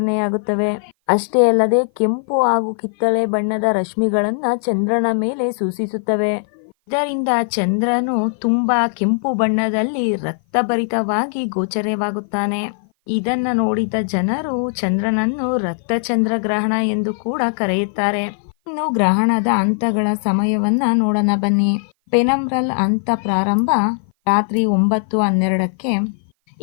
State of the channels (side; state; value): right; silent; 55 dB below the other